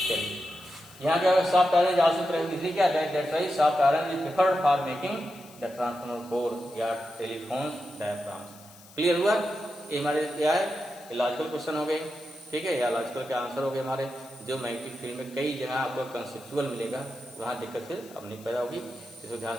यहाँ क्या है, सॉफ्ट आयरन आल्सो प्रेफर्ड, इसलिए क्या है, that's why soft iron is preferred for making the transformer core या टेलीफोन्स डायफ्राम्स। क्लियर हुआ, ये हमारे क्या है, लॉजिकल क्वेश्चन हो गए, ठीक है, या लॉजिकल के आंसर हो गए हमारे, जो मैग्नेटिक फील्ड में कई जगह आपको कंसेप्चुअल मिलेगा, वहां दिक्कत फिर अब नहीं पैदा होगी, इसको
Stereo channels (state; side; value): noise; left; hiss, 22 dB below the sound